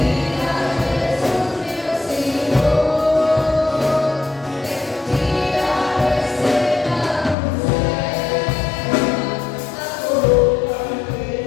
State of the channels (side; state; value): right; drops out; at 7.4 s